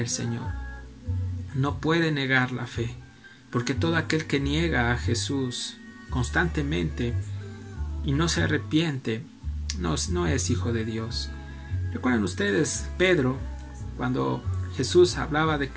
Señor. No puede negar la fe, porque todo aquel que niega a Jesús constantemente y no se arrepiente, no es hijo de Dios. ¿Recuerdan ustedes Pedro, cuando Jesús hablaba de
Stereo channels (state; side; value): identical; both; correlation 1.00